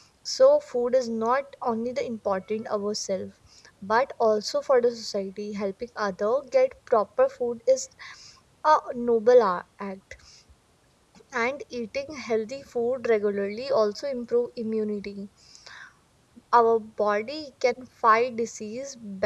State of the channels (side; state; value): both; identical; correlation 1.00